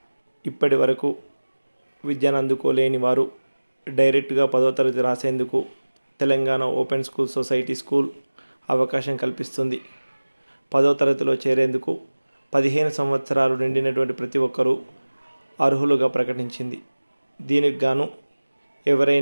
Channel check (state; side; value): inverted; both; correlation -1.00